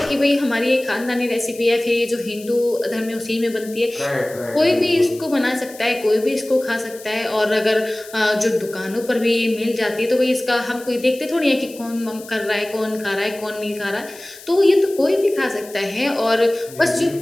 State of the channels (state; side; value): noise; left; hiss, 18 dB below the sound